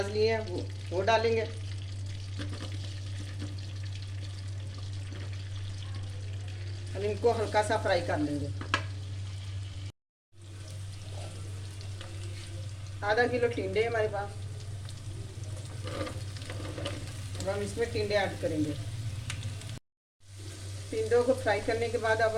लिए हैं, वो डालेंगे। हम इनको हल्का सा फ्राई कर लेंगे। आधा किलो टिंडे हमारे पास। अब हम इसमें टिंडे ऐड करेंगे। टिंडों को फ्राई करने के बाद अब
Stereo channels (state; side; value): identical; both; correlation 1.00